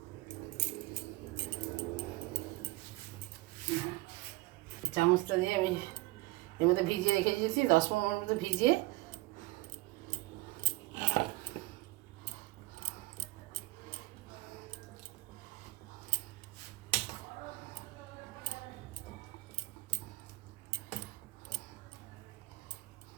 চামচটা দিয়ে আমি এর মধ্যে ভিজিয়ে রেখে দিয়েছি, 10-15 মিনিট মতো ভিজিয়ে।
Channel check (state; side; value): quieter; left; 21.8 dB